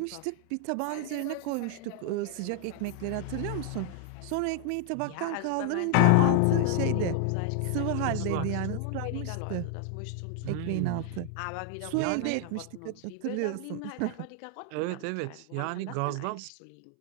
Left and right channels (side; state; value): both; different; correlation 0.00